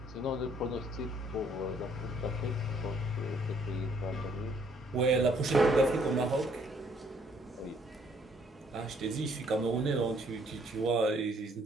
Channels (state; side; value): normal; both; correlation 0.65